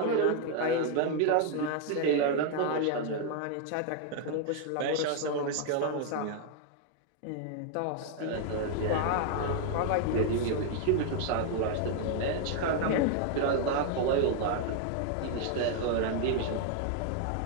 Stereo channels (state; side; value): different; both; correlation 0.00